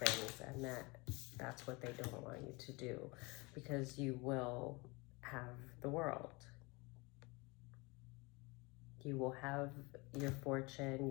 and that's what they don't want you to do, because you will have the world. You will have your fortune,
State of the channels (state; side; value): quieter; right; 26.3 dB